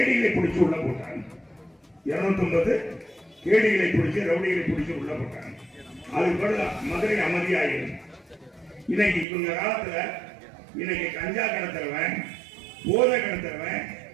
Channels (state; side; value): drops out; left; at 9.2 s